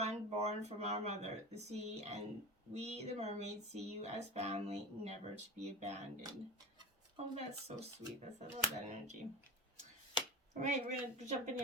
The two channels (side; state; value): both; normal; correlation 0.29